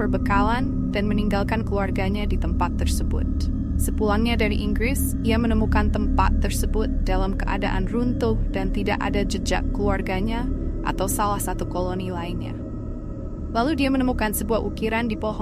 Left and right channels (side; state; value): both; identical; correlation 1.00